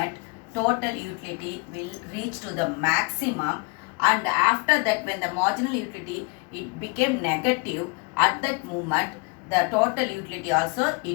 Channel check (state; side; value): quieter; right; 30.7 dB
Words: total utility will reach to the maximum, and after that when the marginal utility it became negative, at that moment the total utility also